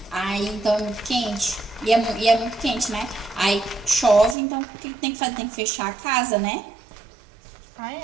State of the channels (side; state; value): left; drops out; at 4.4 s